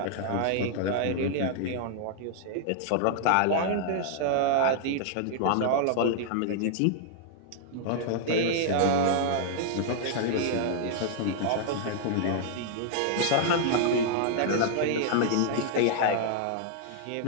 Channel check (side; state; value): both; different; correlation -0.01